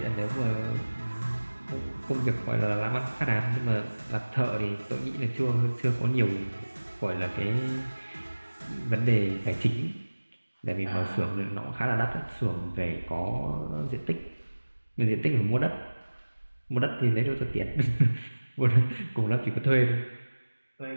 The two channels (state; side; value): inverted; both; correlation -1.00